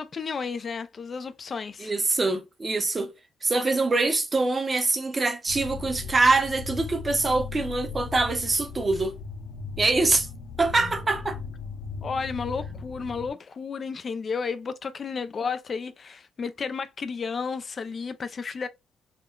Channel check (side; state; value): both; normal; correlation 0.88